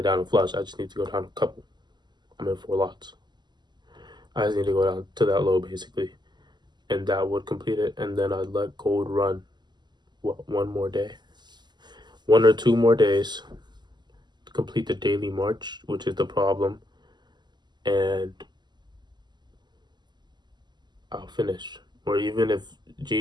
down to flush. I just need to go down a couple. I'm in 4 lots. I just need to go down to that low basically, and that would complete it. And then I'd let gold run, one more day, 1 or 2 more days to complete the daily march, which is the problem, and I'll finish. Or even if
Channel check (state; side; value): late; left; 0.21 ms